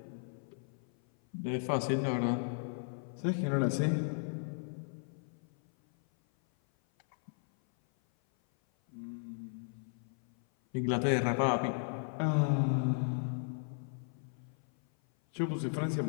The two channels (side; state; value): right; silent; 54 dB below the other